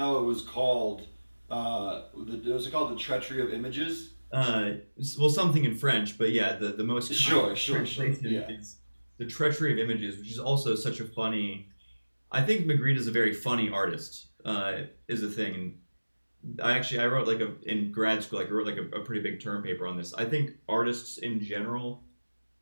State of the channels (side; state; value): both; inverted; correlation -1.00